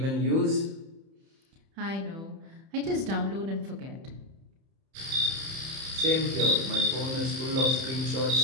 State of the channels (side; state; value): left; late; 31 ms